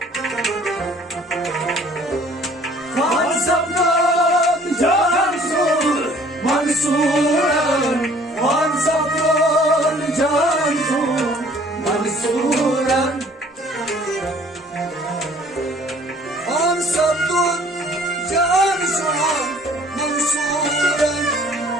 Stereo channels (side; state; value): both; normal; correlation 0.55